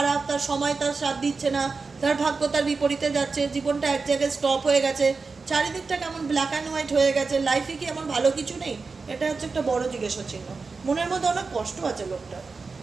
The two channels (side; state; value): left; quieter; 4.4 dB